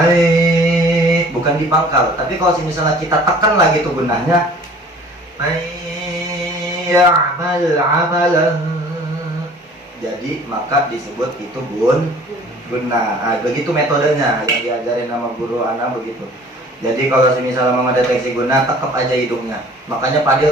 Bukan di pangkal. Tapi kalau misalnya kita tekan lagi tuh gunnahnya, ya'mal amalan, jadi maka disebut itu gunnah. Begitu metodenya yang diajarin sama guru anak begitu. Jadi kalau misalnya mau ngedeteksi gunnah, tekep aja hidungnya. Makanya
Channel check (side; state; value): both; normal; correlation 0.50